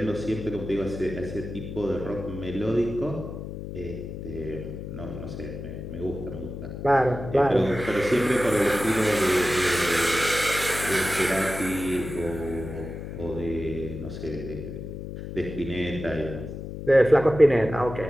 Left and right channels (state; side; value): noise; left; hum, 8 dB below the sound